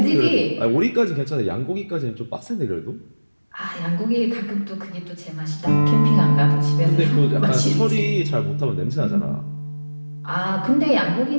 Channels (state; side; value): inverted; both; correlation -1.00